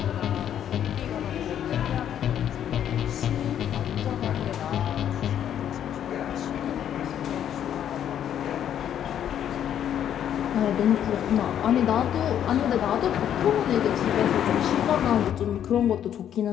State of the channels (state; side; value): quieter; right; 9.9 dB